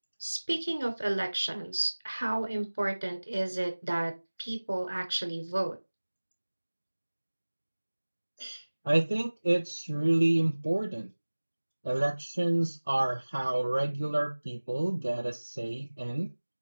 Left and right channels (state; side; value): inverted; both; correlation -1.00